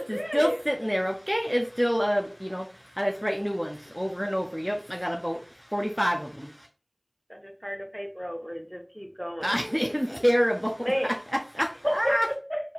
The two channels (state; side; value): identical; both; correlation 1.00